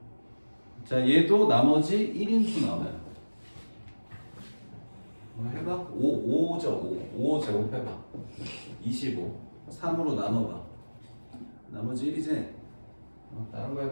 자, 얘도 나머지 1인수 나와요. 뭐 해봐. 5죠. 5 제곱해봐. 25. 3으로 나눠봐. 나머지 1이지? 다른 거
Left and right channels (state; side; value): inverted; both; correlation -1.00